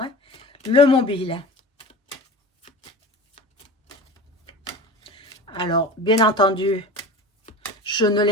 Hein? Le mobile. Alors, bien entendu, je ne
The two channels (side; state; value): both; normal; correlation 0.34